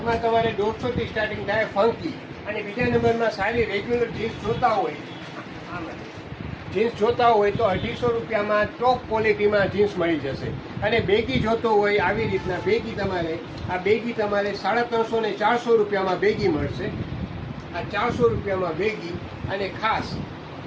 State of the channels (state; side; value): identical; both; correlation 1.00